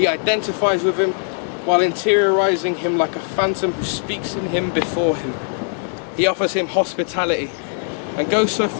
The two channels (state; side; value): silent; right; 66 dB below the other